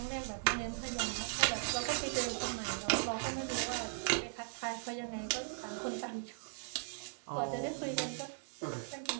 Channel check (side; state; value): left; silent; digital silence